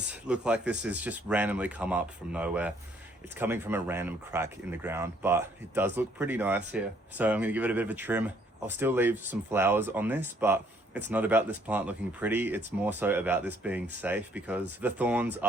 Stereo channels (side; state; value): both; normal; correlation 0.65